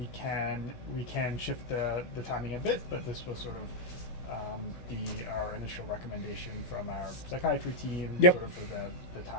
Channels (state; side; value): late; right; 17 ms